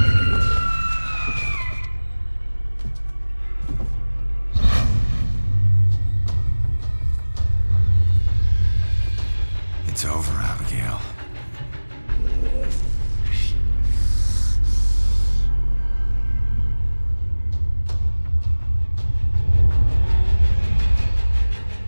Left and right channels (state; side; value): inverted; both; correlation -1.00